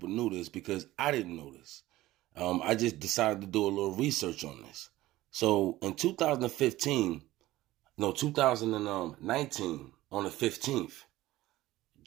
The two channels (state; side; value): quieter; left; 16.6 dB